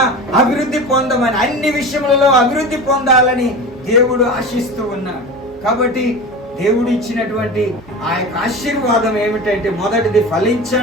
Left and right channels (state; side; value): normal; both; correlation 0.31